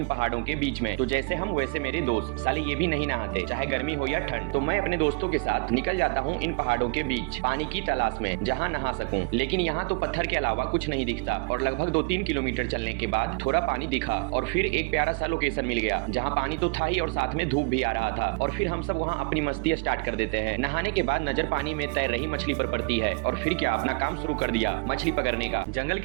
पहाड़ों के बीच में। तो जैसे हम वैसे मेरे दोस्त साले ये भी नहीं नहाते, चाहे गर्मी हो या ठंड। तो मैं अपने दोस्तों के साथ निकल जाता हूँ इन पहाड़ों के बीच पानी की तलाश में, जहाँ नहा सकूं। लेकिन यहाँ तो पत्थर के अलावा कुछ नहीं दिखता। और लगभग 2-3 किलोमीटर चलने के बाद थोड़ा पानी दिखा और फिर एक प्यारा सा लोकेशन मिल गया, जहाँ पानी तो था ही और साथ में धूप भी आ रहा था। और फिर हम सब वहाँ अपनी मस्ती स्टार्ट कर देते हैं। नहाने के बाद नजर पानी में तैर रही मछली पर पड़ती है और फिर क्या अपना काम शुरू कर दिया, मछली पकड़ने का। जंगल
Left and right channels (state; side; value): quieter; left; 29.6 dB